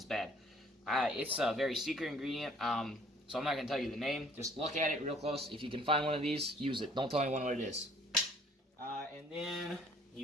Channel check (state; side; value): normal; both; correlation 0.57